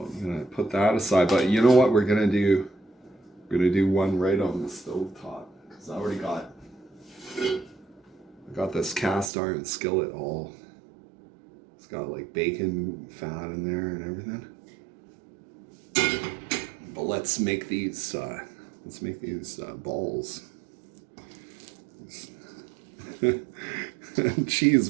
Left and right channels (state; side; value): drops out; left; at 9.3 s